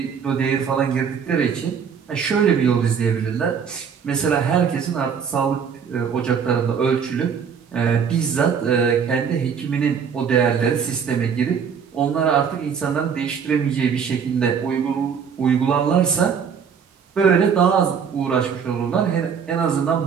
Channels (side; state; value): left; quieter; 6.9 dB